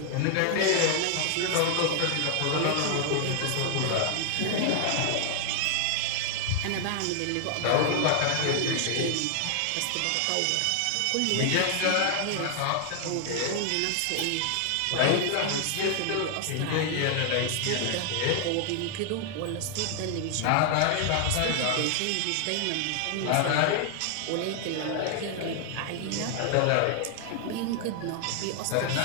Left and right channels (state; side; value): different; both; correlation 0.00